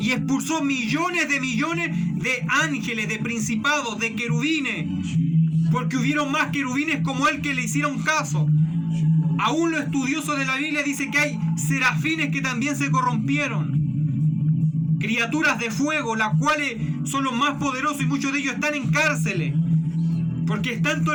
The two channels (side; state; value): both; identical; correlation 1.00